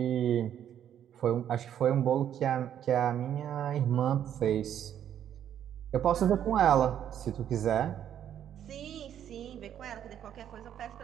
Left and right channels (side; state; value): left; quieter; 10.0 dB